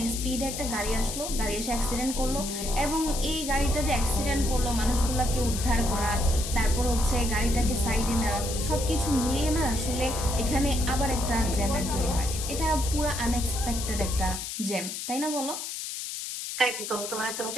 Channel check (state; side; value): noise; left; hiss, 6 dB below the sound